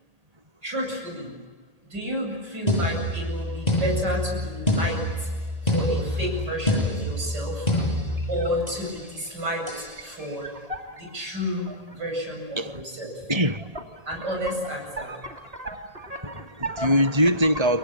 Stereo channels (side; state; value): left; late; 1.8 ms